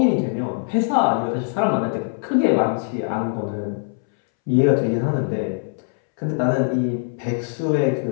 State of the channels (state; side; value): silent; right; 64 dB below the other